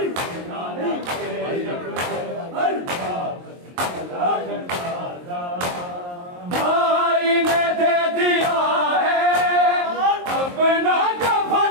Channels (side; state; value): left; late; 23 ms